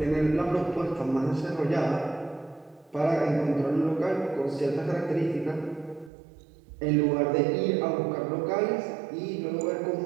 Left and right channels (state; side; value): drops out; left; at 6.1 s